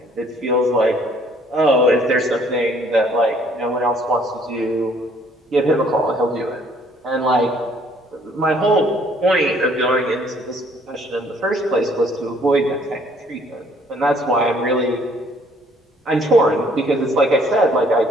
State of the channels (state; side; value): normal; both; correlation 0.61